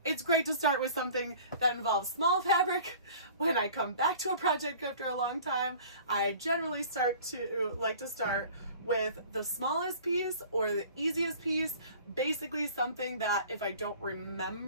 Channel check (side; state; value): both; inverted; correlation -0.46